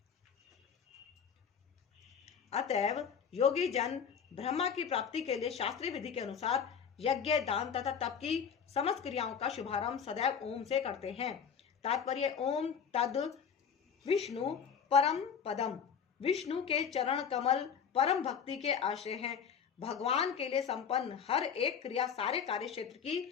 अतएव योगी जन ब्रह्मा की प्राप्ति के लिए शास्त्रीय विधि के अनुसार यज्ञ, दान तथा तप की समस्त क्रियाओं का शुभारंभ सदैव ओम से करते हैं। तात्पर्य ओम तद विष्णु परम पदम, विष्णु के चरण कमल परम भक्ति के आश्रय हैं। भगवान के लिए संपन्न हर एक क्रिया सारे कार्य क्षेत्र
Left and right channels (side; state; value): right; quieter; 7.2 dB